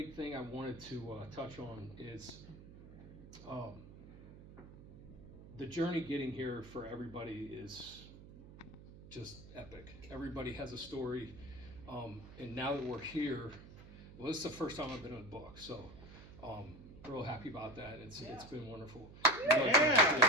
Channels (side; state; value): right; noise; hum, 17 dB below the sound